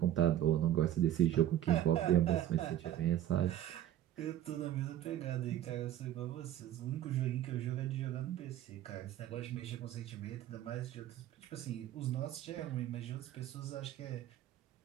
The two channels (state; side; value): quieter; left; 12.2 dB